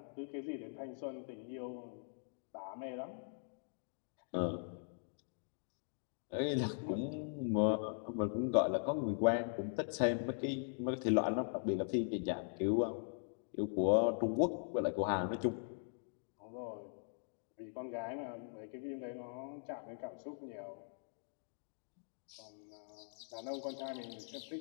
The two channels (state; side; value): silent; right; digital silence